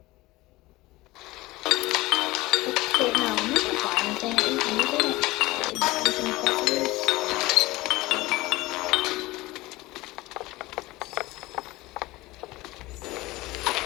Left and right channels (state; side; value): quieter; right; 19.8 dB